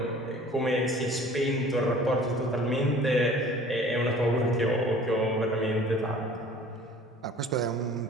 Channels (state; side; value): normal; both; correlation 0.48